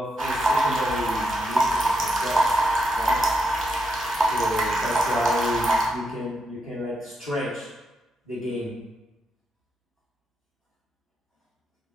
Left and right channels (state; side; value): normal; both; correlation 0.81